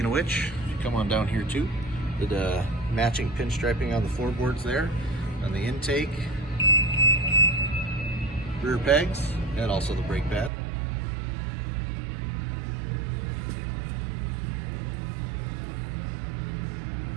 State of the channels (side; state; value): left; drops out; at 10.5 s